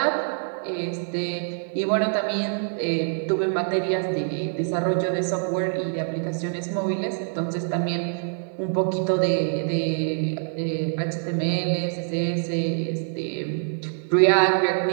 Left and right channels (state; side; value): silent; left; digital silence